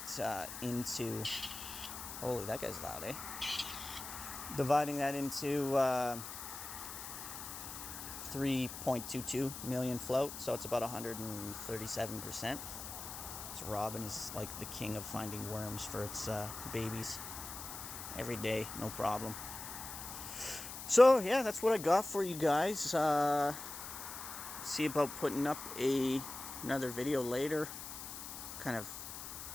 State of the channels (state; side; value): noise; left; hiss, 9 dB below the sound